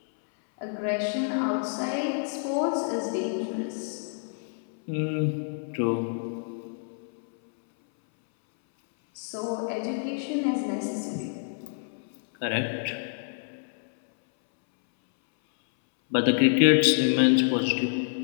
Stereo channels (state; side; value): silent; right; 60 dB below the other